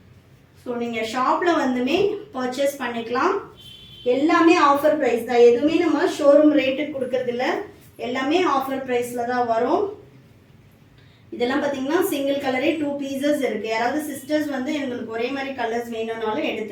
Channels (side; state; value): both; identical; correlation 1.00